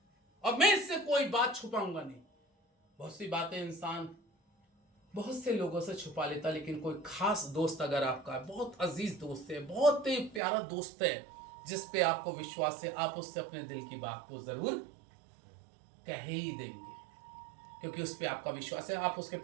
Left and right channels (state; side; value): drops out; left; at 10.4 s